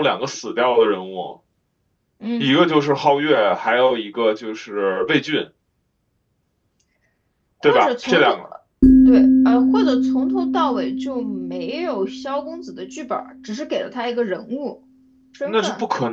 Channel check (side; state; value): both; identical; correlation 1.00